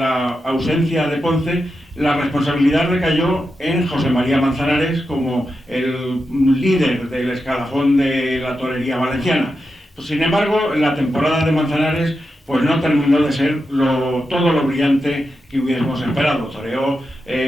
ausencia de Ponce, la responsabilidad recayó en José María Manzanares como el líder del escalafón de la torería valenciana. Pues, sin embargo, la temporada de Manzanares pues no terminó de ser todo lo brillante que hubiésemos esperado. Toreó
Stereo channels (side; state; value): both; normal; correlation 0.88